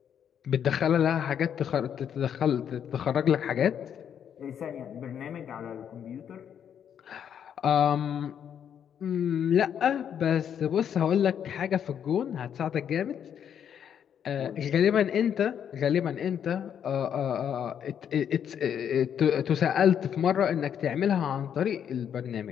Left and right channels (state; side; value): quieter; right; 8.7 dB